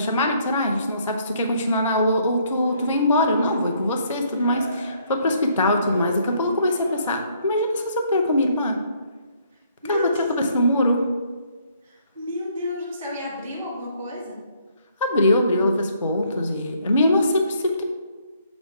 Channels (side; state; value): both; inverted; correlation -0.67